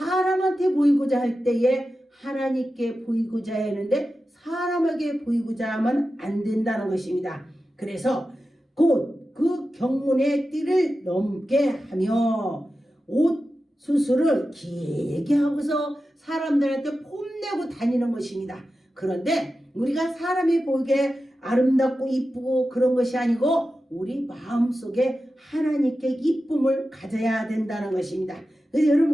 보이고자 할 때에 하나님께 보이고자 했는데 사람에게 보이고자 하면 안 된다는 것입니다. 그래서 곧 그 경문의 띠를 넘게 하며 옷 수술을 길게 하고서 사람들한테 폼내고 다니는 것입니다. 그런데 우리가 사람이 보이게 아름답고 이쁘고 그런 것이 아니고 우리 마음속에 하나님께 이쁨을 가져야 된다는 것입니다. 그래서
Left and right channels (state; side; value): normal; both; correlation 0.92